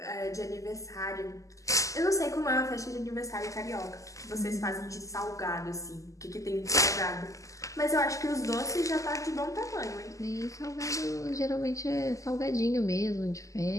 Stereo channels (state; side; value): late; right; 0.16 ms